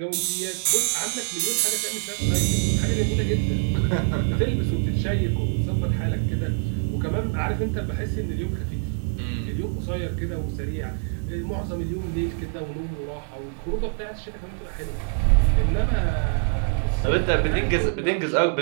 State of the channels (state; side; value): quieter; left; 38.8 dB